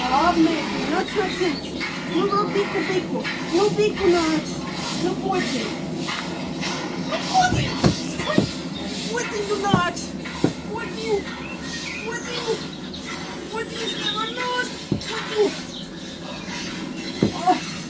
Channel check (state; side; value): identical; both; correlation 1.00